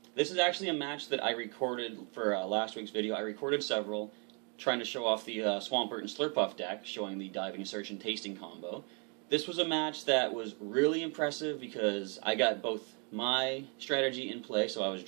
this is actually a match that I recorded for last week's video. I recorded several, trying to show off the Swampert and Slurpuff deck, showing the diving, search, and tasting combo. This was a match that was really impressive because I got both my strategy in play, so I was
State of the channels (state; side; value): quieter; left; 37.2 dB